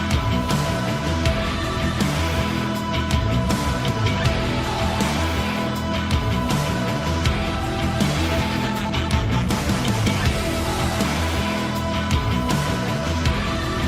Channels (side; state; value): both; identical; correlation 1.00